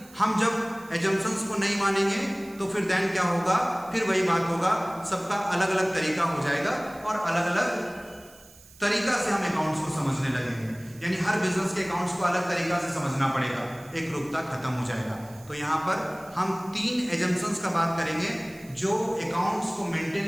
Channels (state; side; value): noise; right; hiss, 23 dB below the sound